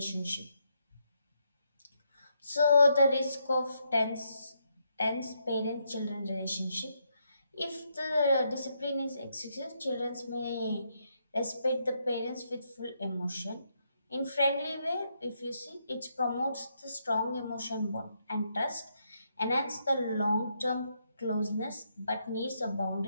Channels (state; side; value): inverted; both; correlation -0.78